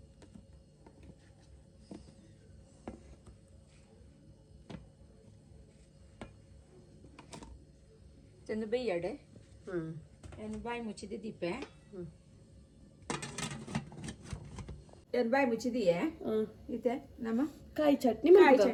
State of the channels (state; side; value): identical; both; correlation 1.00